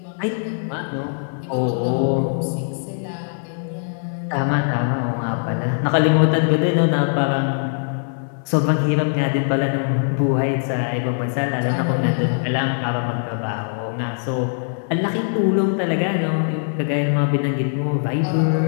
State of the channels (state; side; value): silent; right; 65 dB below the other